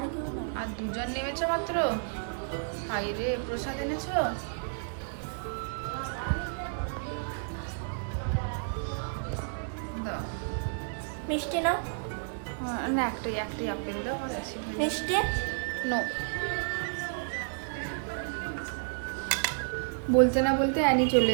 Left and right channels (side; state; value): left; silent; digital silence